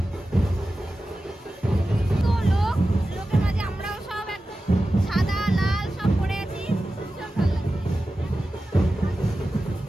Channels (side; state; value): both; normal; correlation 0.94